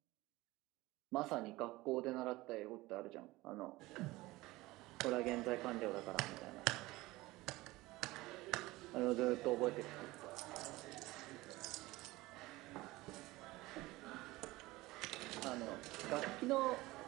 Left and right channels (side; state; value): left; quieter; 19.7 dB